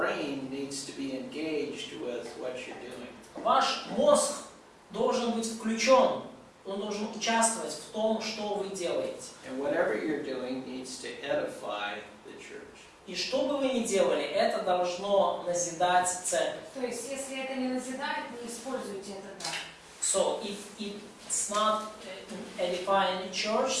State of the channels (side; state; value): both; identical; correlation 1.00